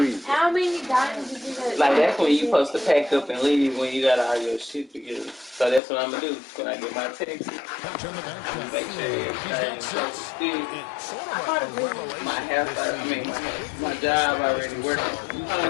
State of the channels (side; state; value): right; drops out; at 5.8 s